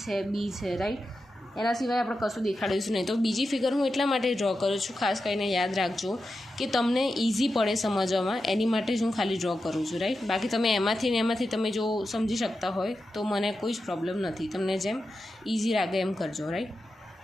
છે, B છે, રાઈટ. એના સિવાય આપણે કશું દેખાડીશું નહીં. તો બીજી ફિગર હું એટલા માટે ડ્રો કરું છું, ખાસ કરીને યાદ રાખજો કે તમને ઇઝી પડે સમજવામાં, એની માટે જ હું ખાલી ડ્રો કરું છું, રાઈટ. બાકી તમે એમાંથી તમે જો સમજી શકતા હોય તો મને કોઈ જ પ્રોબ્લેમ નથી, તમને જેમ ઇઝી લાગે એમ કરજો, રાઈટ.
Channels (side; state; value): both; normal; correlation 0.90